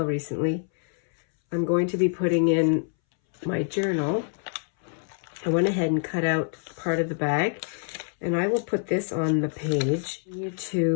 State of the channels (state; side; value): silent; right; 61 dB below the other